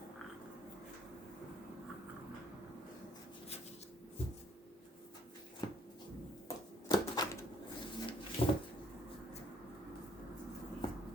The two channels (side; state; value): both; normal; correlation 0.63